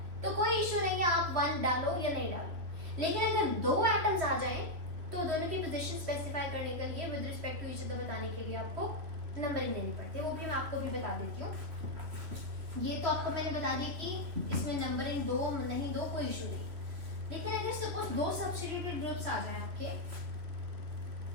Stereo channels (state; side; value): late; left; 3.0 ms